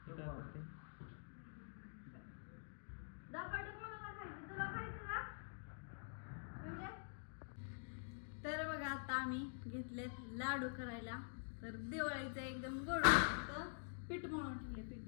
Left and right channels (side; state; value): right; silent; digital silence